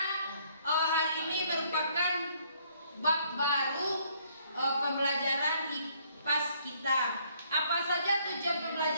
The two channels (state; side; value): inverted; both; correlation -0.65